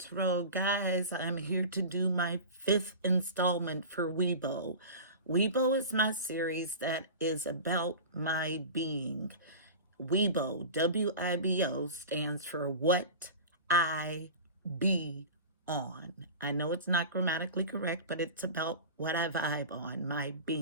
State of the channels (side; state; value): both; inverted; correlation -0.33